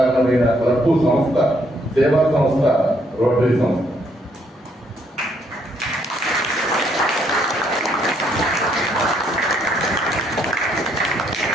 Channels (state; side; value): normal; both; correlation 0.70